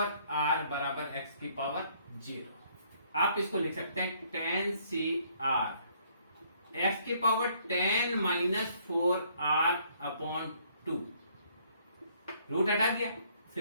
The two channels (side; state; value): both; inverted; correlation -0.65